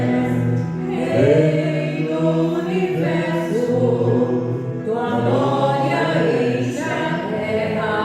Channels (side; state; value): both; identical; correlation 1.00